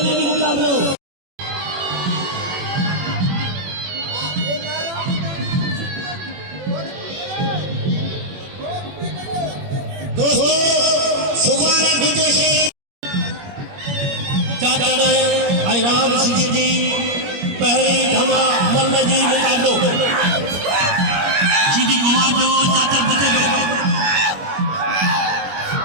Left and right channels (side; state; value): left; late; 21 ms